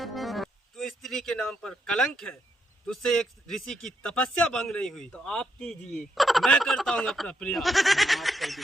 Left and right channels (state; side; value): normal; both; correlation 0.78